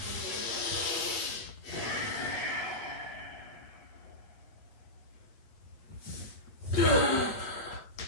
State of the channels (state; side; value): late; right; 8.5 ms